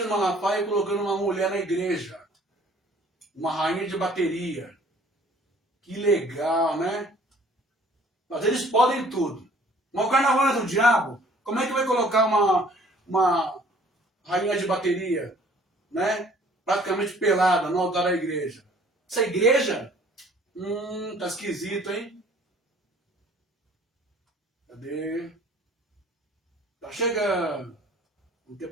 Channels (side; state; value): both; normal; correlation 0.55